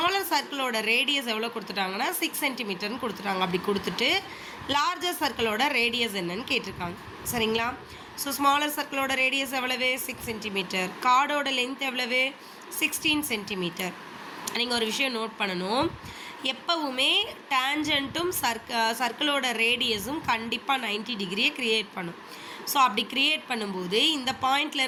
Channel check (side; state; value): both; identical; correlation 1.00